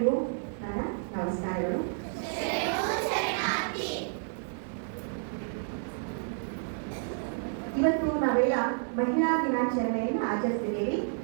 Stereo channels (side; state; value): left; silent; digital silence